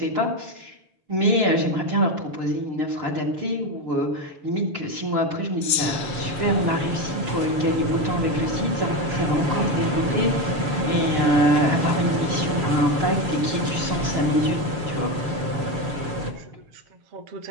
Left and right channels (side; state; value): left; late; 6.9 ms